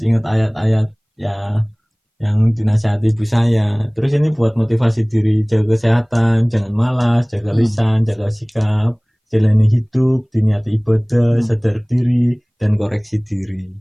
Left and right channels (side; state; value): both; identical; correlation 1.00